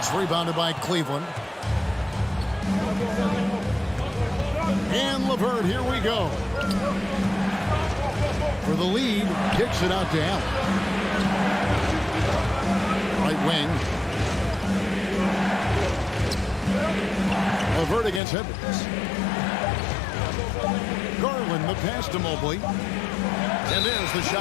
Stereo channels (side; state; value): right; drops out; at 18.2 s